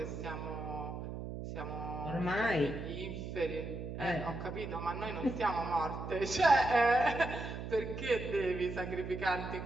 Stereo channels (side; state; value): right; noise; hum, 7 dB below the sound